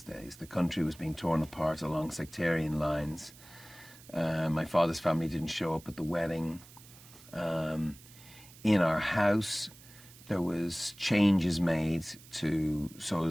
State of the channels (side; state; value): right; noise; hiss, 21 dB below the sound